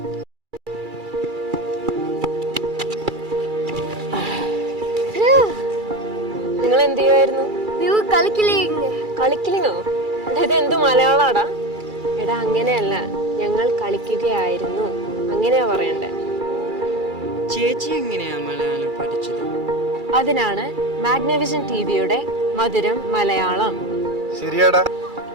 നിങ്ങൾ എന്ത് ചെയ്യുമായിരുന്നു? കളിക്കിലിങ്ങോ? ഇത് എന്ത് മലയാളാടാ? എടാ അങ്ങനെയല്ല, ഞങ്ങൾ കളിക്കുകയായിരുന്നു, അങ്ങനെയാ പറയണ്ടേ. ചേച്ചി എങ്ങനെയാ മലയാളം പഠിച്ചത്? അതിനാണ് മാഗ്നവിഷൻ ടിവിയുടെ മധുരം മലയാളം. ശരിയാടാ,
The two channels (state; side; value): late; left; 2.3 ms